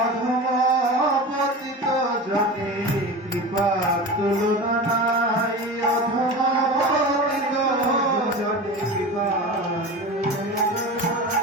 জনে কৃপা তুলনা নাই, অধমপতিত জনে কৃপা।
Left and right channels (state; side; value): normal; both; correlation 0.30